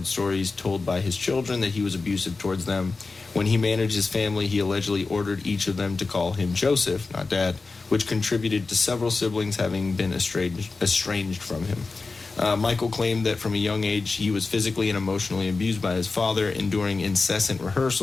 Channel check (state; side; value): quieter; right; 4.0 dB